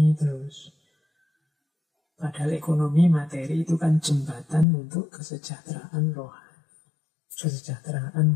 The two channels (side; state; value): right; drops out; at 4.7 s